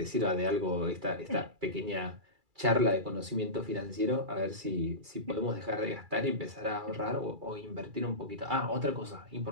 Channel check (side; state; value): left; late; 2.3 ms